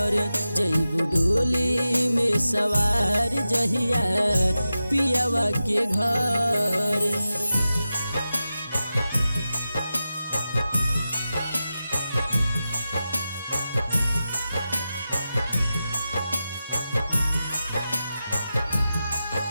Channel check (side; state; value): both; inverted; correlation -0.92